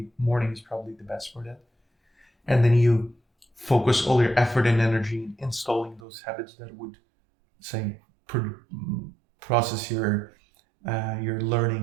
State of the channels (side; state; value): left; drops out; at 6.0 s